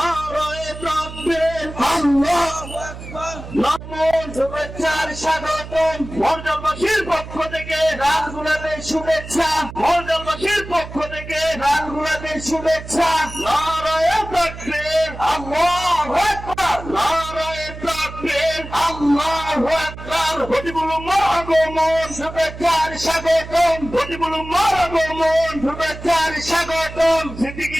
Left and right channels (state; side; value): noise; right; hum, 12 dB below the sound